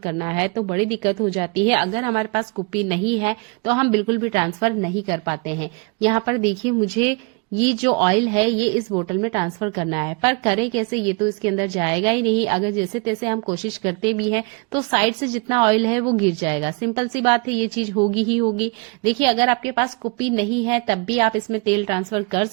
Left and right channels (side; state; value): left; quieter; 31.5 dB